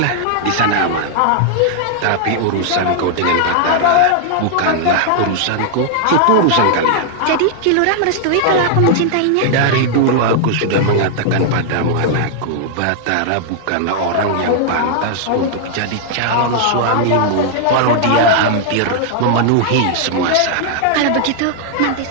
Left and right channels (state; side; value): different; both; correlation -0.01